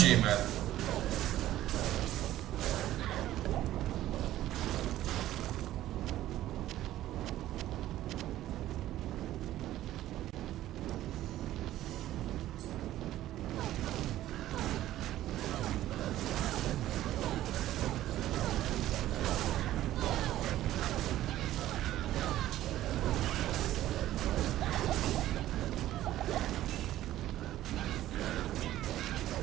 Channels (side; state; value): left; quieter; 14.0 dB